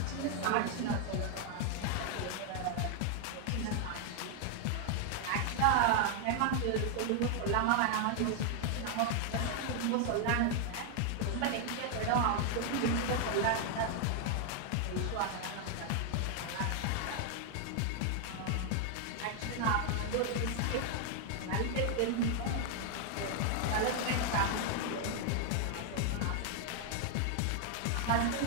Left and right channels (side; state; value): both; different; correlation 0.00